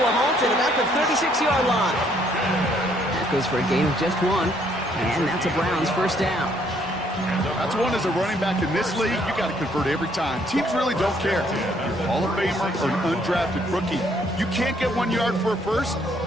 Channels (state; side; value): normal; both; correlation 0.67